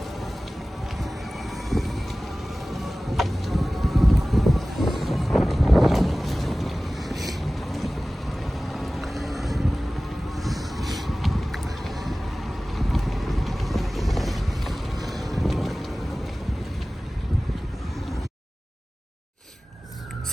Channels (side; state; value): both; normal; correlation 0.97